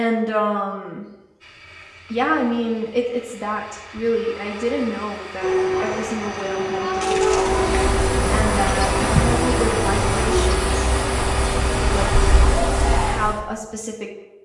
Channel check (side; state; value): both; identical; correlation 1.00